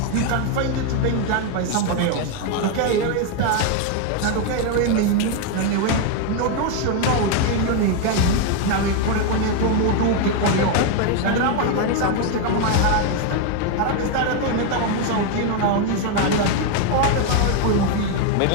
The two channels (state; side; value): different; both; correlation 0.01